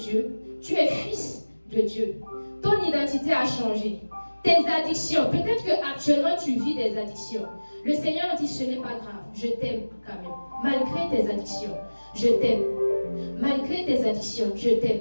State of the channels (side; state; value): both; inverted; correlation -1.00